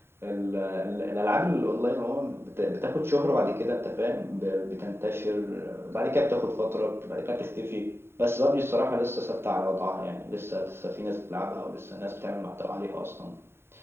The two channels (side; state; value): left; late; 0.11 ms